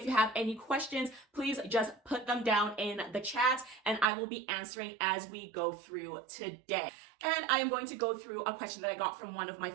you have any questions, please just put them down in the chat and I will be answering as we go through today. And I am going to go through a question that I got from one of my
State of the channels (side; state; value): left; drops out; at 4.0 s